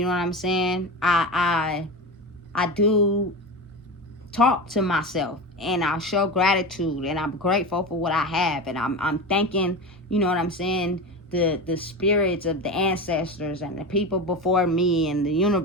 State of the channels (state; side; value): normal; both; correlation 0.24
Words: know what I'm saying? I do talk to myself, and I show gratitude, and I'm grateful for what I have, and I'm thanking, you know what I'm saying, the spirits of the ancestors and the people before me and the